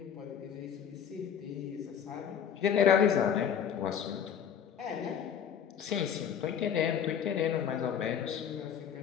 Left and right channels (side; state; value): right; quieter; 8.3 dB